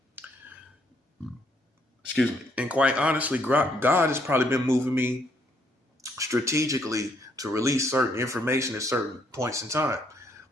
Excuse me. And quite honestly, God has probably been moving me strategically to release certain information at certain points in time.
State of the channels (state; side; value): normal; both; correlation 0.71